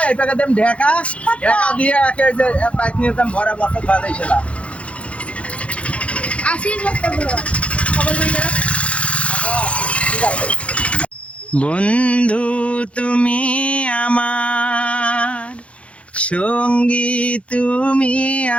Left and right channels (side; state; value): right; late; 0.062 ms